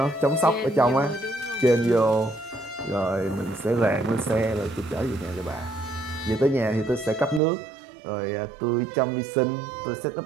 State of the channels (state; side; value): drops out; left; at 7.4 s